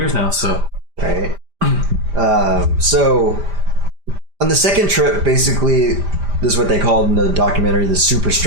now, so. Right. So, on the second trip, basically, this is what they called in the documentary the super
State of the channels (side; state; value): left; late; 5.0 ms